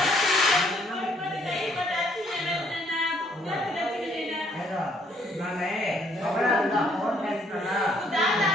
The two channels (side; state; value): both; normal; correlation 0.66